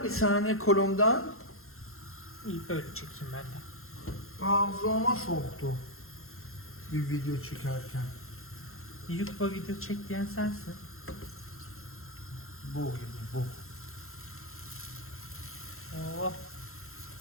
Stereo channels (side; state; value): right; late; 0.62 ms